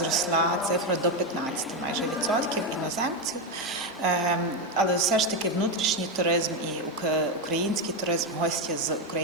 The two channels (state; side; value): normal; both; correlation 0.09